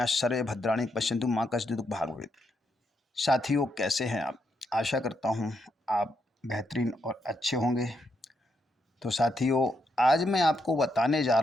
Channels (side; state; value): both; normal; correlation 0.80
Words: सर्वे भद्राणि पश्यन्तु मा कश्चित् दुःख भाग् भवेत्। साथियों, कैसे हैं आप? आशा करता हूँ आप बेहतरीन और अच्छे होंगे। तो साथियों, आज मैं आपको बताने जा